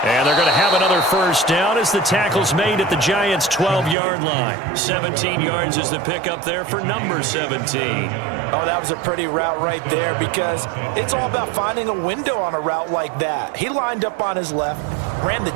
And they're going to have another first down as the tackle's made at the Giants' 12-yard line. 17 yards is the pickup there for number 17. Oh, that was a pretty route right there because it's all about finding a window on a route like that. He lined up on his left, ran the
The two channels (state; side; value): drops out; left; at 4.0 s